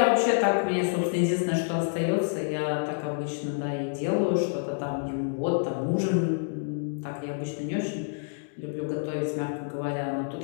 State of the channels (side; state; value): right; silent; digital silence